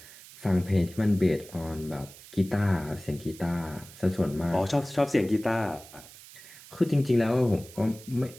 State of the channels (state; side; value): noise; right; hiss, 19 dB below the sound